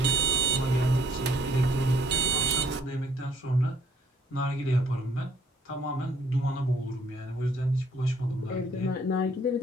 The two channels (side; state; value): both; normal; correlation 0.65